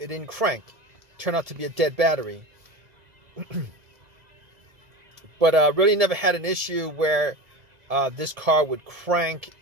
crank. It turned out to be a dead battery. But really never had an issue where this car would crank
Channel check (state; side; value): late; left; 1.8 ms